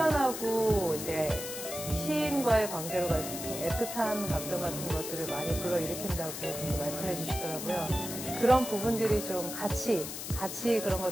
이제 시인과의 관계로 좀 애틋한 감정 같은 것들을 많이 불러일으킨다고 말씀해 주시더라고요. 그런 부분들이 좀 같이 그런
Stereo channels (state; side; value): noise; left; hiss, 7 dB below the sound